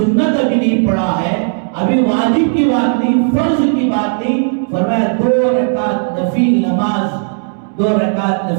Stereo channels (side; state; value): left; silent; digital silence